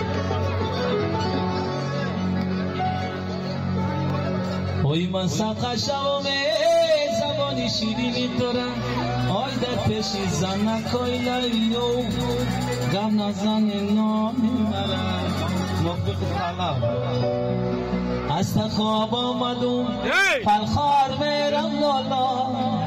من سقشم زبانی شیرینی دارم آی در پیشی زن نکای لیو غم نزن نامی مرم موقع طلب از خواب آمدم پلخار میرم لالا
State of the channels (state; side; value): identical; both; correlation 1.00